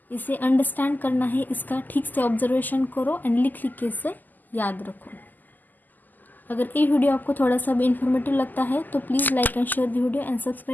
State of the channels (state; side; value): late; right; 0.085 ms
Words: इसे अंडरस्टैंड करना है, इसका ठीक से ऑब्जर्वेशन करो एंड लिख के इसे याद रखो। अगर ये वीडियो आपको थोड़ा सा भी इन्फॉर्मेटिव लगता है तो please like and share the video and